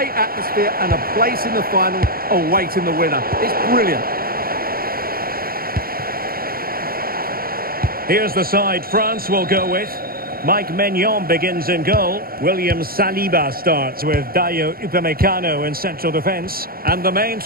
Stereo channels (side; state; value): left; late; 0.43 ms